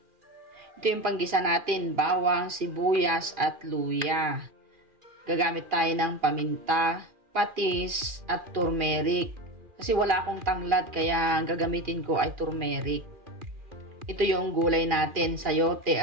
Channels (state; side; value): late; left; 2.4 ms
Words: Ito yung panggisa natin, bawang, sibuyas at luya. Gagamit tayo ng paminta, patis at turmeric. Kasi wala akong tanglad kaya ang gagamitin ko ay turmeric. Ito yung gulay natin, sayote